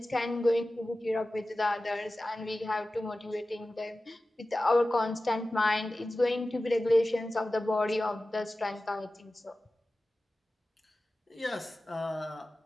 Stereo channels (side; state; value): both; normal; correlation 0.95